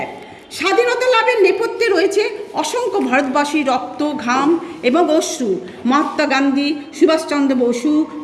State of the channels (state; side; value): identical; both; correlation 1.00